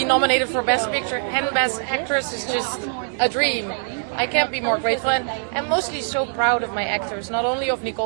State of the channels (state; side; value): silent; left; digital silence